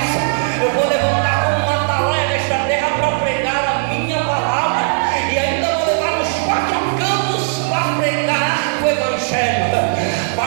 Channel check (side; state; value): left; silent; 68 dB below the other